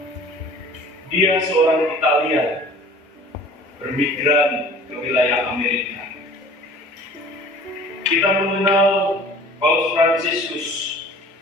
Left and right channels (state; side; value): normal; both; correlation 0.47